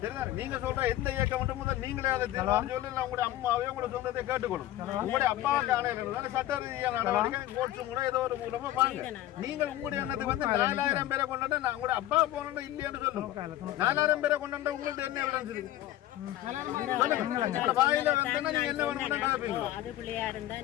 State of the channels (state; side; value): quieter; right; 14.2 dB